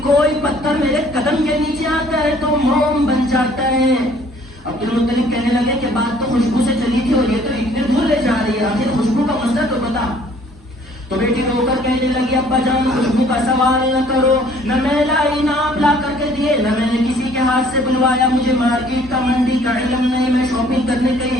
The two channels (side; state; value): both; normal; correlation 0.58